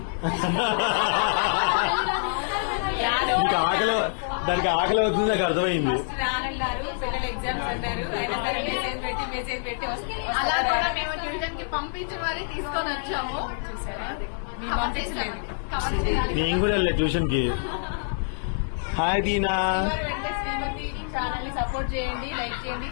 దానికి ఆకలి అవుతుంది, నాకు అర్థమైంది. రానన్నారు, పిల్లలు ఎగ్జామ్స్ అన్నారు, మెసేజ్ పెట్టి అలా కూడా మేము ట్యూషన్ కి పంపించి మరీ తీసుకొని వచ్చాము. నేను కూడా వెళ్ళా ట్యూషన్ కి. హాయ్ దీనా. సపోర్ట్ చేయండి, లైక్ చేయండి,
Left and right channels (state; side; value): silent; right; digital silence